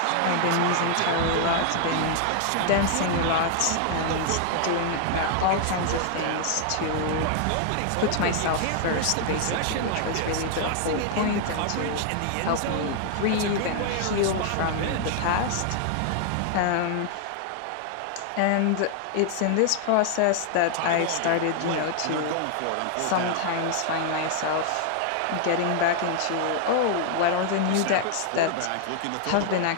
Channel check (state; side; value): different; both; correlation 0.00